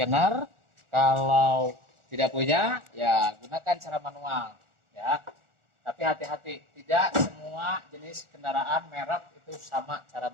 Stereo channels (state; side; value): late; left; 1.4 ms